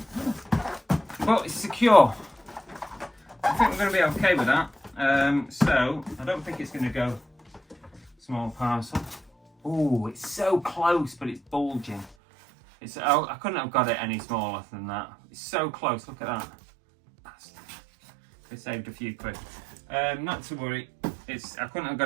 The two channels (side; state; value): left; drops out; at 12.2 s